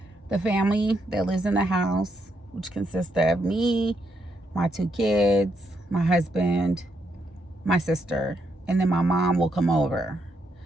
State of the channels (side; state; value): both; normal; correlation 0.78